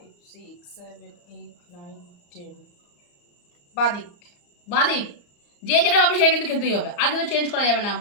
6 7 8 9 10 বাদিক। বাঁ দিক। যে যেটা পাবে সে কিন্তু খেতেই হবে, আর কিন্তু চেঞ্জ করা যাবে না,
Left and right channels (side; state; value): right; late; 34 ms